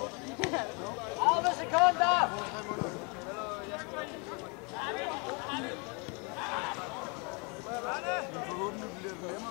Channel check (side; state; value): right; quieter; 32.6 dB